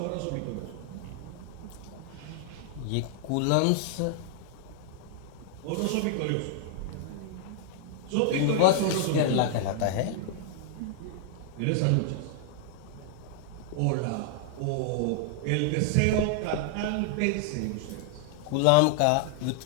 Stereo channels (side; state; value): both; different; correlation -0.01